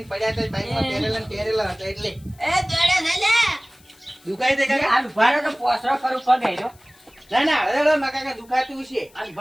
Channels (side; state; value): left; noise; hiss, 28 dB below the sound